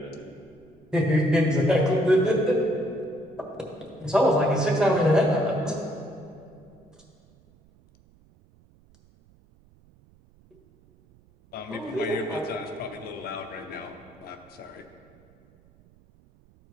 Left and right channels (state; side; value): noise; right; rumble, 29 dB below the sound